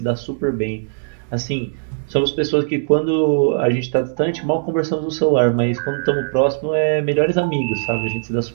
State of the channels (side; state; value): left; silent; digital silence